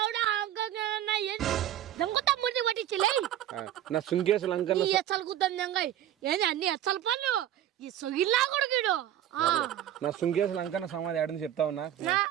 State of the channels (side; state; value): left; quieter; 11.6 dB